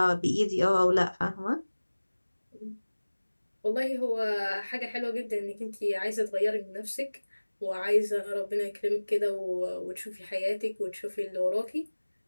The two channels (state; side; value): inverted; both; correlation -1.00